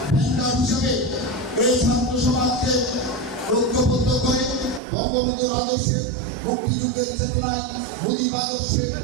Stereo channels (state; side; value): drops out; left; at 4.8 s